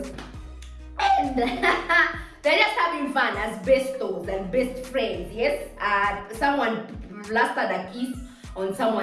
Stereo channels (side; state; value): both; identical; correlation 1.00